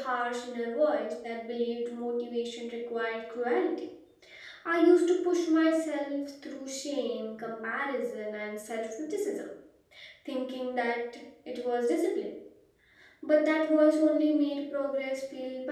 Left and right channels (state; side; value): identical; both; correlation 1.00